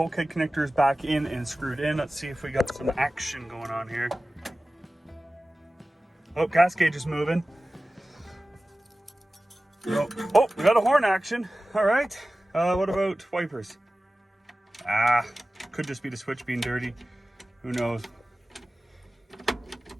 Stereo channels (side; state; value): both; normal; correlation 0.96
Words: connectors back in and screwed in. Let's see if we got some action going on here. Oh, gas gauge is moving. Oh, we got a horn action. All right. What about wipers? Could just be the switch being dirty. Who knows?